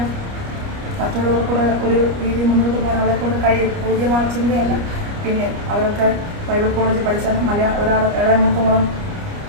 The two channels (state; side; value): late; left; 29 ms